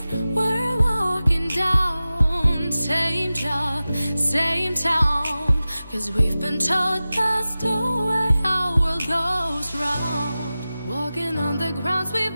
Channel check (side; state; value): both; inverted; correlation -0.95